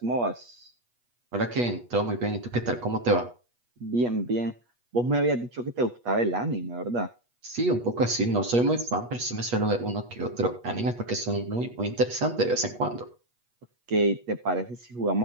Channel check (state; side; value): late; left; 8.3 ms